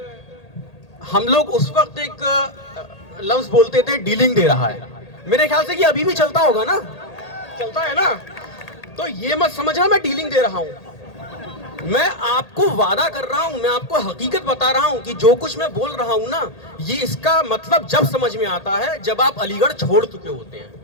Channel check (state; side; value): late; right; 1.8 ms